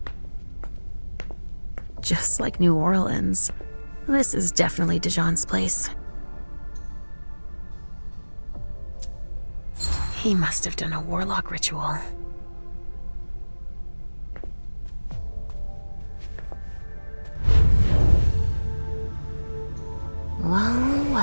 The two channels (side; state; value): both; inverted; correlation -1.00